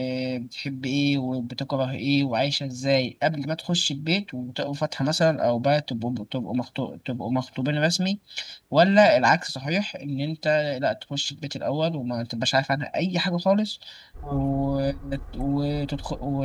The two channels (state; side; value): identical; both; correlation 1.00